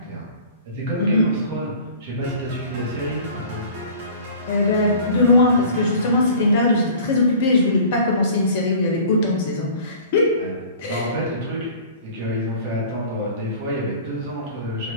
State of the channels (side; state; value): both; inverted; correlation -0.45